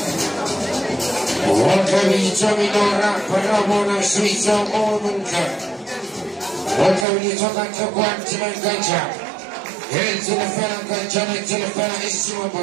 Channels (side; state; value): left; drops out; at 7.1 s